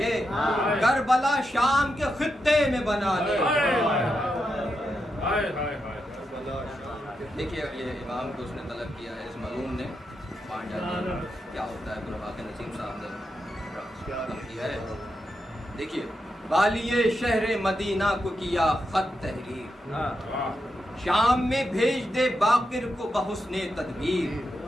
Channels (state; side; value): normal; both; correlation 0.86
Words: کربلا شام کے خطے میں بنانے. دیکھیے یہ امام کو اس نے طلب کیا ہے، اس ملعون نے کیا ہوتا ہے، برواق نسیم صاحب نے طلب کیا ہے. دیکھیے والی شہر مدینہ کو کیا خط تحریر، شام میں بھیج دے باقر کو بحسن تدبیر،